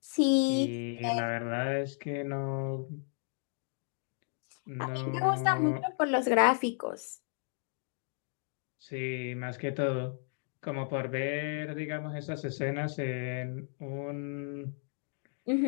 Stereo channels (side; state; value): right; silent; 55 dB below the other